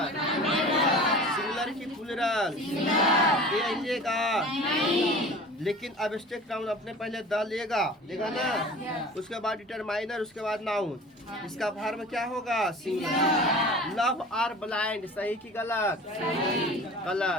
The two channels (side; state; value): both; normal; correlation 0.40